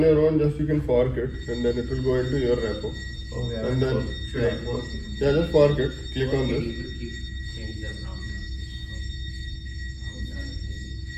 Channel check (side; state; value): both; identical; correlation 1.00